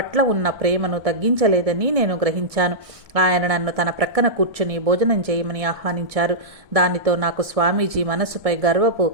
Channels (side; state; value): left; late; 1.7 ms